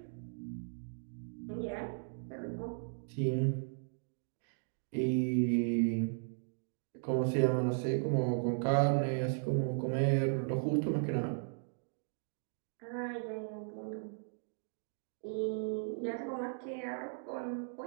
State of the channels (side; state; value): left; silent; digital silence